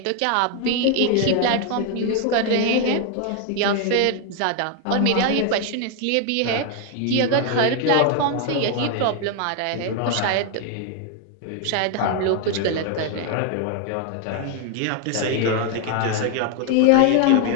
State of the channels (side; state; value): both; different; correlation 0.01